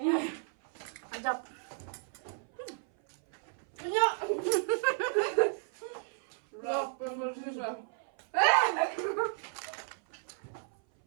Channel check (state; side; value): silent; left; 55 dB below the other